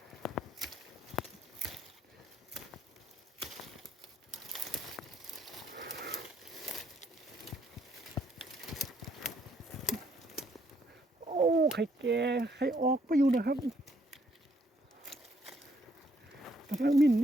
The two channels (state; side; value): normal; both; correlation 0.69